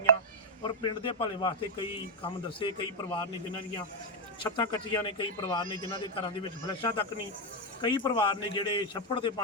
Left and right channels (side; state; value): both; normal; correlation 0.02